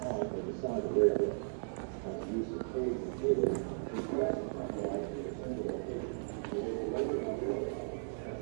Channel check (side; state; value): left; silent; digital silence